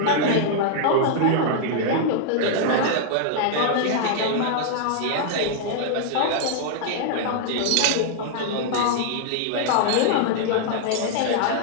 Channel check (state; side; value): different; both; correlation -0.01